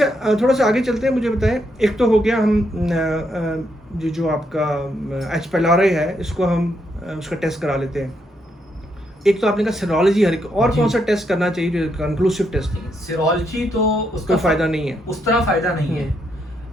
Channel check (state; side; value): normal; both; correlation 0.78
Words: थोड़ा सा आगे चलते हैं, मुझे बताएं, एक तो हो गया हम जो आपका एच पेलारे है, इसको हम उसका टेस्ट करा लेते हैं। एक तो आपने कहा सीरोलॉजी, हर एक और कौन सा टेस्ट करना चाहिए जो कंक्लूसिव टेस्ट है? सीरोलॉजी तो उसका कोई फायदा नहीं है, उस तरह फायदा नहीं है।